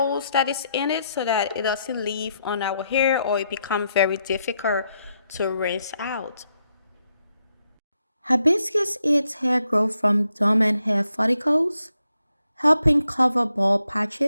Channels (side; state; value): both; inverted; correlation -0.80